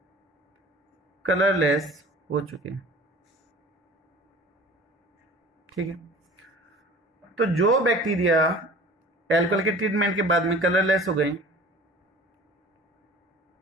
कलरलेस हो चुके हैं, ठीक है। तो जो बैक्टीरिया एल्कोहल के ट्रीटमेंट के बाद में कलरलेस हो गए,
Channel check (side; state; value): both; normal; correlation 0.44